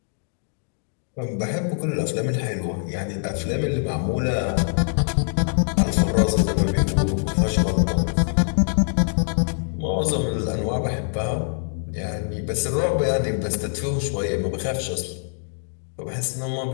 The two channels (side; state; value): right; silent; digital silence